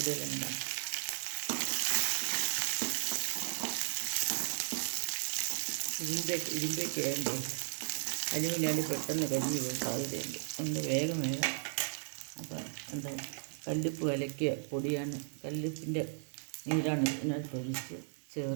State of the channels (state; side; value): silent; left; 54 dB below the other